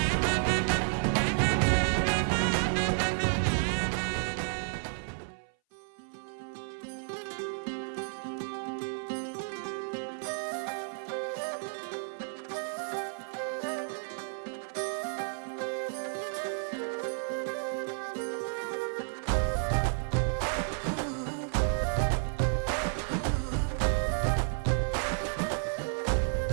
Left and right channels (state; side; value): silent; left; 57 dB below the other